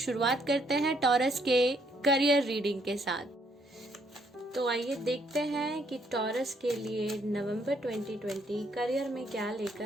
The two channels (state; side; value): normal; both; correlation 0.70